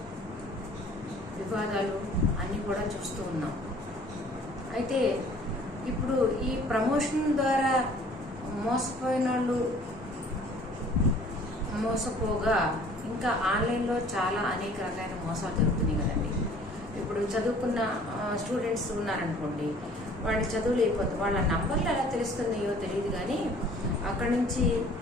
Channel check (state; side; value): normal; both; correlation 0.53